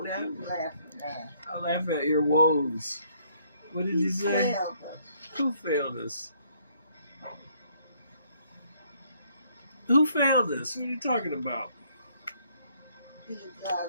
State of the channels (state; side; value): inverted; both; correlation -0.66